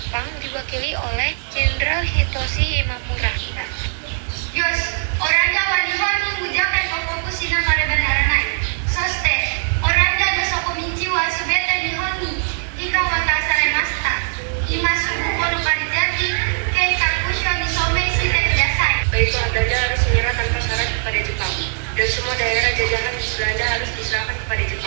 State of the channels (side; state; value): left; silent; 66 dB below the other